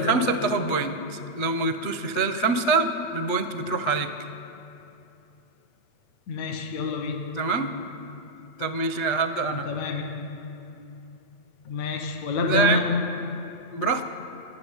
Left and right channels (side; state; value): right; late; 8.1 ms